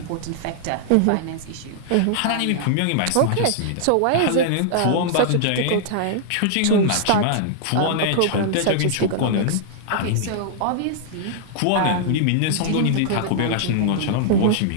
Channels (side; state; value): both; different; correlation -0.01